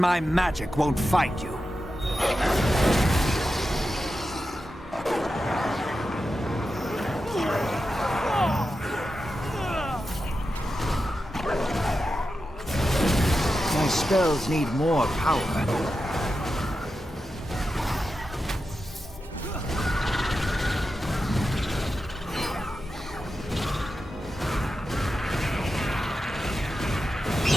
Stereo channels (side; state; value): both; normal; correlation 0.90